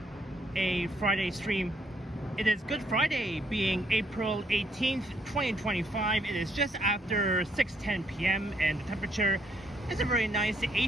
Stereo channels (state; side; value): normal; both; correlation 0.72